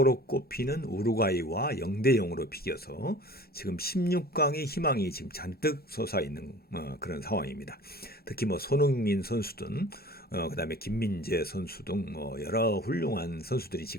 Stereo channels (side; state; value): both; normal; correlation 0.43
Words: 꼽히는 우루과이와 0대 0으로 비겨서 지금 16강의 희망이 지금 잔뜩 솟아있는 그런 상황입니다. 특히 뭐 손흥민 선수 등 그다음에 김민재 선수 등 여러 훌륭한 선수들이